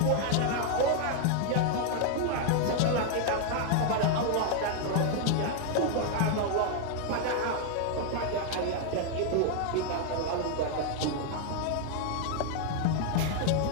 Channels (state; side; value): different; both; correlation 0.00